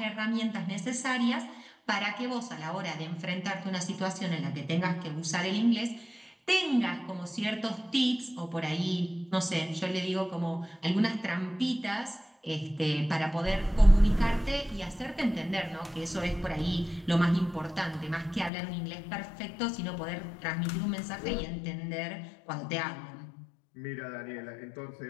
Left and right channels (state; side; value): drops out; right; at 18.5 s